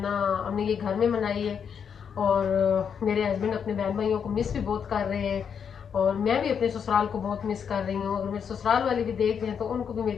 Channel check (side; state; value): right; quieter; 7.3 dB